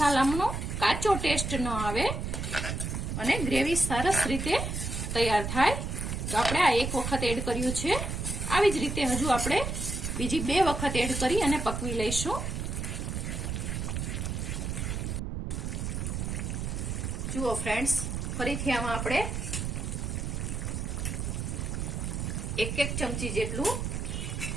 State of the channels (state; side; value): noise; right; rumble, 3 dB below the sound